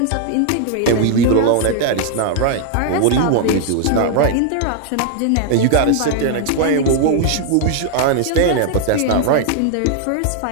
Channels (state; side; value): different; both; correlation 0.00